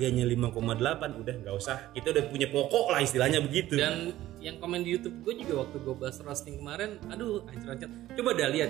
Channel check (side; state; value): left; quieter; 14.7 dB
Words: 5,8 udah nggak usah. Kita udah punya pokok lah istilahnya begitu. Dan yang komen di YouTube gue juga waktu gue bahas roasting kemarin, aduh anjir. Coba dah